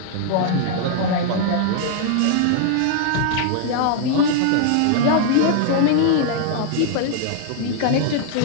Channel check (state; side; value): different; both; correlation 0.00